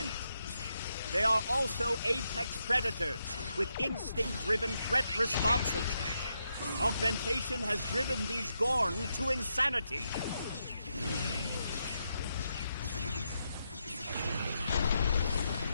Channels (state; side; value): inverted; both; correlation -0.83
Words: They are also apex predators, with instinct-driven threat responses. Augmentation has driven these Gorn to insanity.